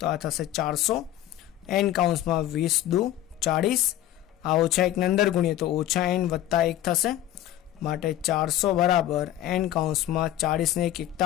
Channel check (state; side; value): quieter; right; 13.3 dB